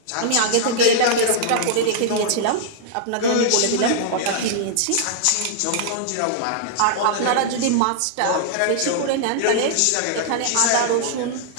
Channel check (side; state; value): both; different; correlation -0.01